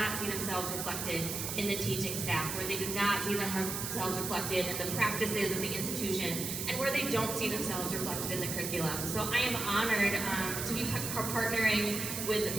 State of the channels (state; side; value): noise; right; hiss, 4 dB below the sound